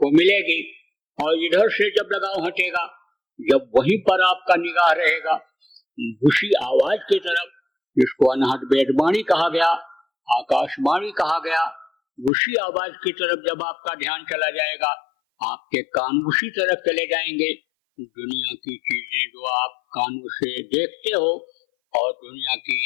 मिलेगी और इधर से जब लगाव हटेगा, जब वहीं पर आपका निगाह रहेगा उसी आवाज की तरफ, जिसको अनहद वेदवाणी कहा गया, आकाशवाणी कहा गया, उसी आवाज की तरफ जब आपका ध्यान चला जाएगा, आपके कान उसी तरफ चले जाएंगे। दुनिया की चीजें जो आप कानों से देखते हो और दुनिया की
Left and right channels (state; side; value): drops out; right; at 12.3 s